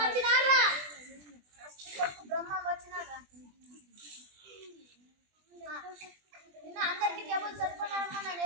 వచ్చినారా? బ్రహ్మం వచ్చినారా? నిన్న అందరికి టేబుల్ చదువుకున్నారమ్మా, నన్ను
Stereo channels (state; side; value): late; left; 20 ms